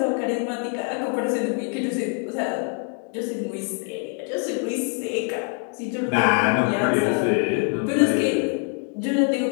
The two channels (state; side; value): quieter; right; 38.6 dB